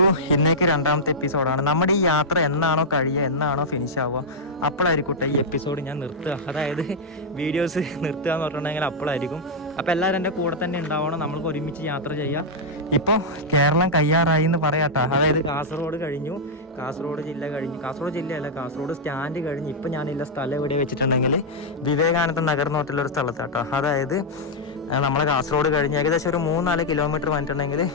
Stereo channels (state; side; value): normal; both; correlation -0.05